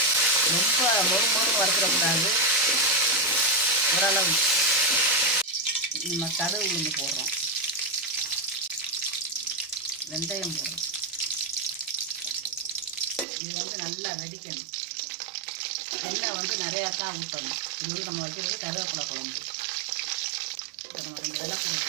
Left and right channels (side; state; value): left; drops out; at 13.2 s